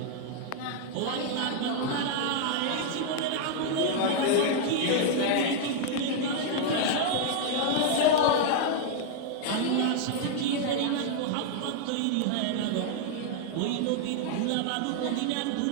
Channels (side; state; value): both; different; correlation 0.00